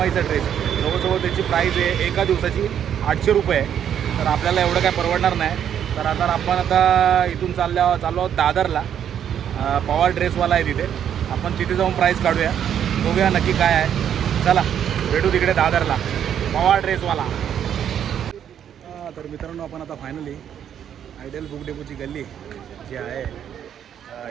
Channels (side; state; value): left; quieter; 9.3 dB